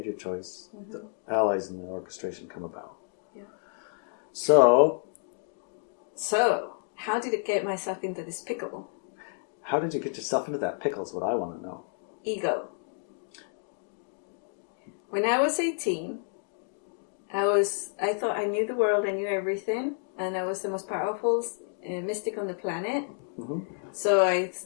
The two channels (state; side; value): silent; right; digital silence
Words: your choice, the allies in the orchestration come about. Yeah. So, how did it get myself into this pickle? how did you get yourself into that pickle is what I want to know. Ego. When I was 18, I thought I knew the world, I knew everything, and I was the most powerful mystic on the planet. Mm-hmm. So I